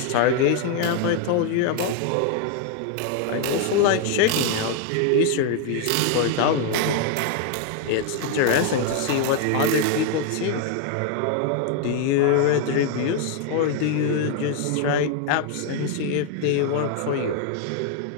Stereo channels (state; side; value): different; both; correlation 0.00